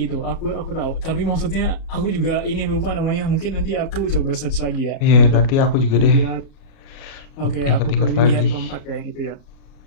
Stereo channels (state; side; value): late; right; 37 ms